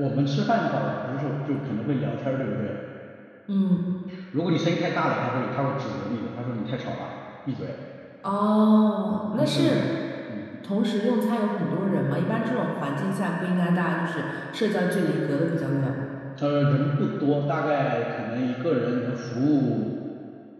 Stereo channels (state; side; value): identical; both; correlation 1.00